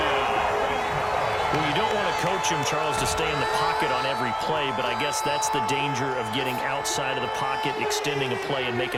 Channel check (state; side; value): identical; both; correlation 1.00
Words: Well, you don't want to coach him, Charles, to stay in the pocket on every play, but I guess that's the danger of getting outside of the pocket, extending a play, and